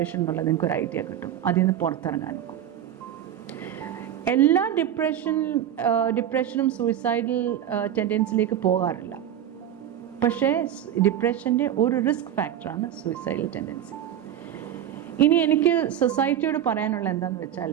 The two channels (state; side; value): quieter; left; 10.5 dB